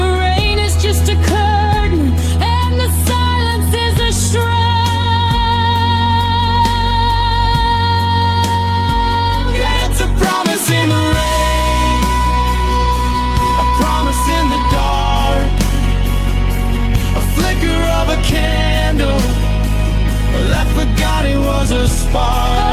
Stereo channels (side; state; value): both; identical; correlation 1.00